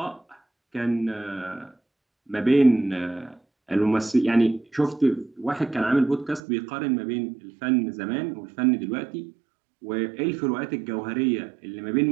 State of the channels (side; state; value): left; drops out; at 6.4 s